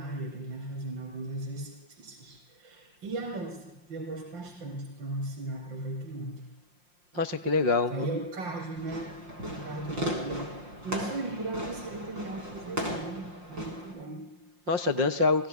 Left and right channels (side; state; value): left; late; 5.6 ms